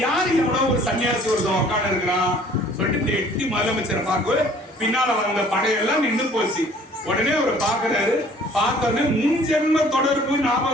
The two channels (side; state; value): both; normal; correlation 0.54